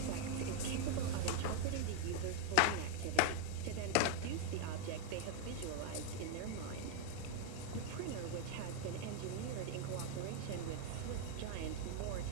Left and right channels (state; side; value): different; both; correlation 0.00